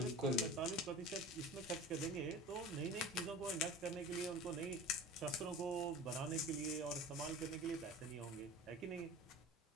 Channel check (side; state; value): both; normal; correlation 0.37